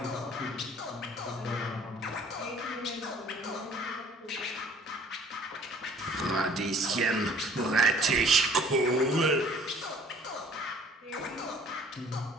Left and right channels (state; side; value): normal; both; correlation 0.53